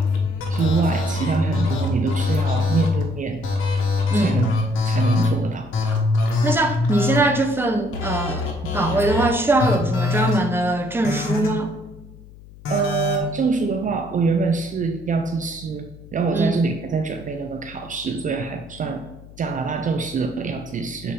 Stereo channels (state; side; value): noise; left; hum, 20 dB below the sound